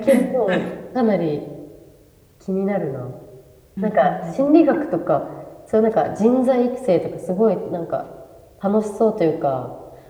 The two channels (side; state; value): both; identical; correlation 1.00